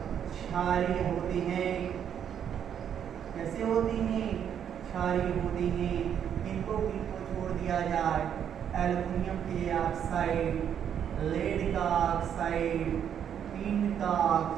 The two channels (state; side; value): quieter; left; 8.8 dB